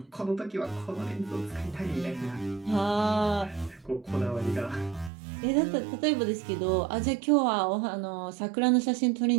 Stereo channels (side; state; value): left; drops out; at 5.1 s